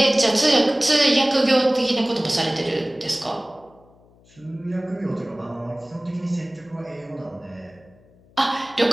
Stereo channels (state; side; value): noise; left; hum, 29 dB below the sound